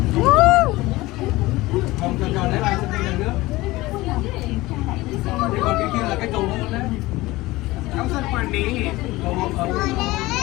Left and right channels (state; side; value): quieter; right; 19.5 dB